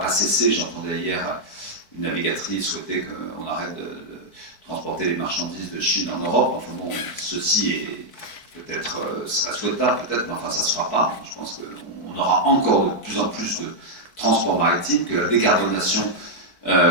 cesser. J'entendais hier une navigatrice souhaiter qu'on arrête de transporter les marchandises de Chine en Europe. Enfin bon, ceci est peut-être serait souhaitable, peut-être, mais enfin ça ne se fera pas. Je pense qu'on aura encore de plus en plus de transport maritime, que la décarbonation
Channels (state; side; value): late; right; 4.5 ms